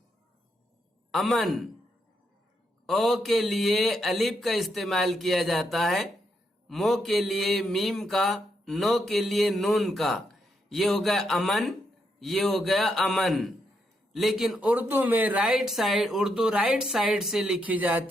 अमन, ओ के लिए अलिफ का इस्तेमाल किया जाता है, मो के लिए मीम का, नो के लिए नून का। ये हो गया अमन, ये हो गया अमन। लेकिन उर्दू में उर्दू राइट साइड से लिखी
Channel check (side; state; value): both; normal; correlation 0.79